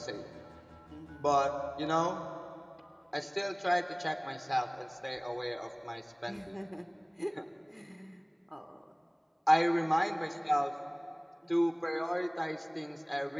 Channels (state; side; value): identical; both; correlation 1.00